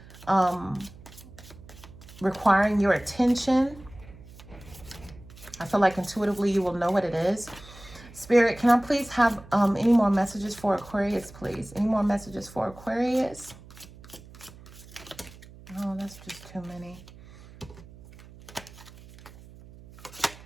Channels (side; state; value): right; noise; hum, 20 dB below the sound